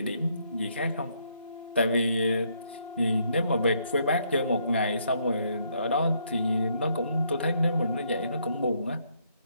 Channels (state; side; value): inverted; both; correlation -0.72